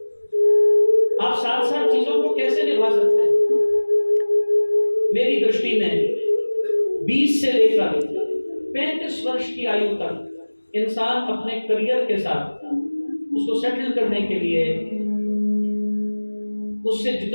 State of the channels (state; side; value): inverted; both; correlation -1.00